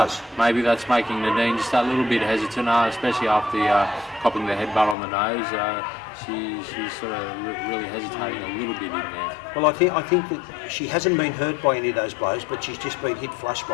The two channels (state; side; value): drops out; right; at 5.0 s